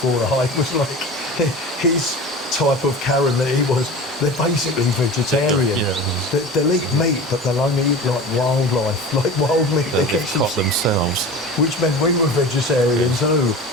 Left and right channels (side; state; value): both; normal; correlation 0.34